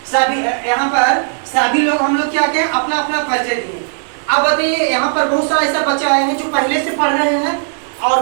सभी यहाँ पर सभी लोग, हम लोग क्या क्या अपना अपना परिचय दिए। अब बताइए, यहाँ पर बहुत सारा ऐसा बच्चा आए हैं जो पहले से पढ़ रहे हैं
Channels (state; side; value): silent; left; 58 dB below the other